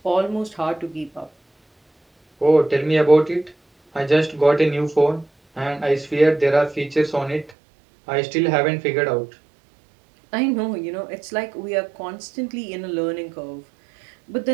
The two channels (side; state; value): left; drops out; at 7.5 s